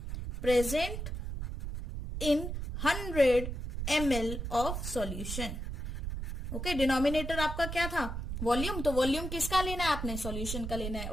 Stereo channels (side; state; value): right; noise; rumble, 5 dB below the sound